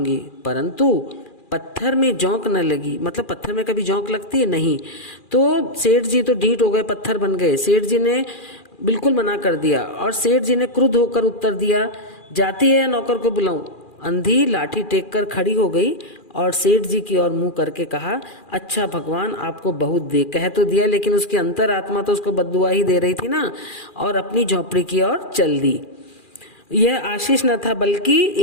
परंतु पत्थर में जोंक न लगी। मतलब पत्थर में कभी जोंक लगती है? नहीं। तो सेठ जी तो ढीठ हो गए, पत्थर बन गए। सेठ जी ने बिल्कुल मना कर दिया और सेठ जी ने क्रुद्ध होकर उत्तर दिया, जाती है या नौकर को बुलाऊं? अंधी लाठी टेक कर खड़ी हो गई और सेठ जी की ओर मुंह करके कहा, अच्छा भगवान आपको बहुत दे। कह तो दिया, लेकिन उसकी अंतरात्मा तो उसको बद्दुआ ही दे रही थी ना, और अपनी झोपड़ी की ओर चल दी। यह आशीष न था बल्कि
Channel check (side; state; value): right; late; 2.4 ms